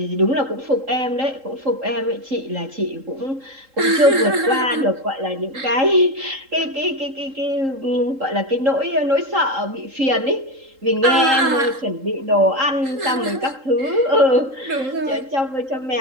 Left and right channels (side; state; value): left; late; 3.8 ms